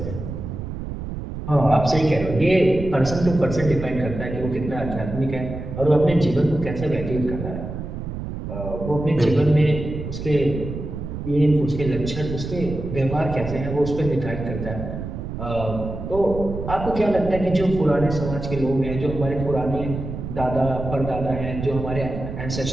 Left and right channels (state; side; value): noise; right; rumble, 7 dB below the sound